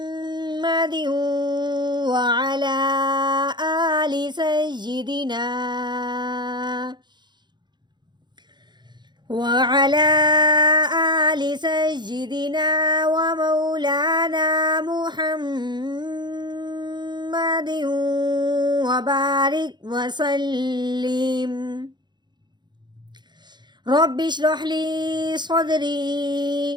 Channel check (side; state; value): left; late; 0.21 ms